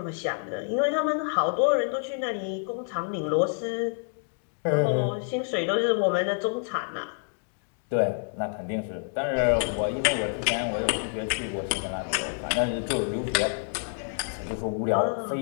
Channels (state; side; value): silent; right; 60 dB below the other